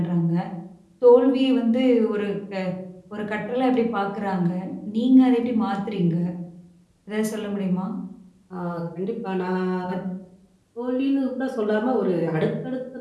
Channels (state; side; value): identical; both; correlation 1.00